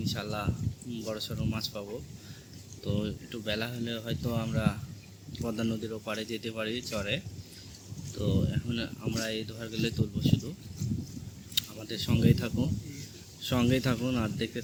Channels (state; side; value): identical; both; correlation 1.00